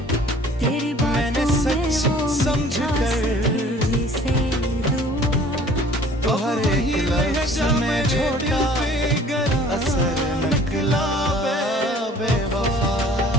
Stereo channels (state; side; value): normal; both; correlation 0.51